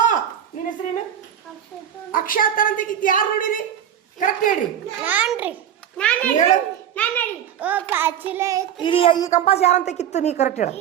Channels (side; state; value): left; quieter; 9.8 dB